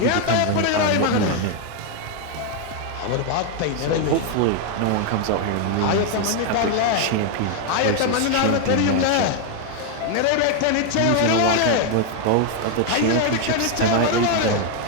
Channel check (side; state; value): both; different; correlation 0.01